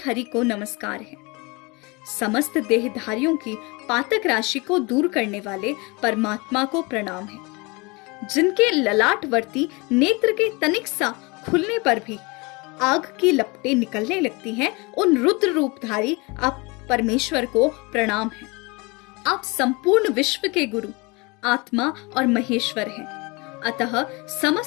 को नमस्कार है। समस्त देहधारियों की पातक राशि को दूर करने वाले परमात्मा को प्रणाम है। जिनके ललाटवर्ती नेत्र के तनिक सा खुलने पर भी आग की लपटें निकलने लगती हैं, उन रुद्र रूपधारी आप परमेश्वर को प्रणाम है। आप संपूर्ण विश्व के गुरु, आत्मा और महेश्वर हैं। अतः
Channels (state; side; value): quieter; right; 27.0 dB